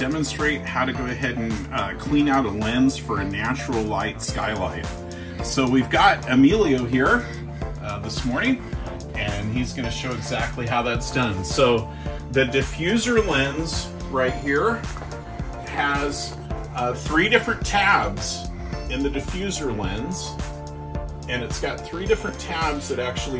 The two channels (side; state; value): both; identical; correlation 1.00